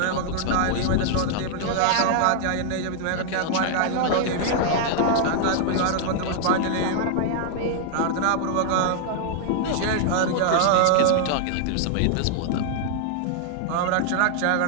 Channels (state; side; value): different; both; correlation 0.00